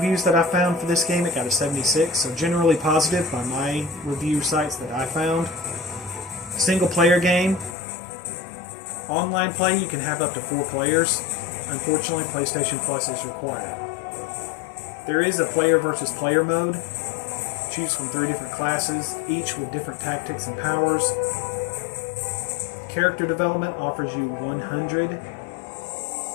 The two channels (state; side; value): drops out; right; at 7.8 s